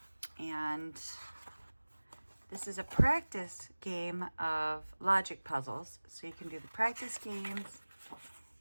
and this is a practice game of logic puzzles, so you can do the practice games,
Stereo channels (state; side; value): inverted; both; correlation -1.00